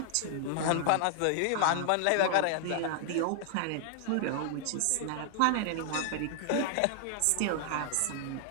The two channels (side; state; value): both; different; correlation 0.00